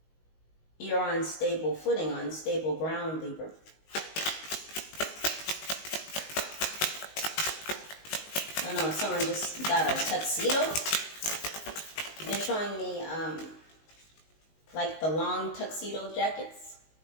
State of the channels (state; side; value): late; right; 19 ms